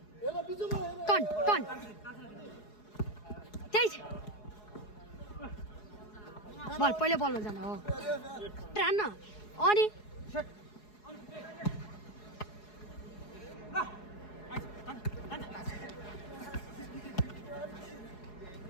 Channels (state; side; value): late; right; 4.8 ms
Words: टन त्यही बल पहिला बलमा जान हो हान्न अनि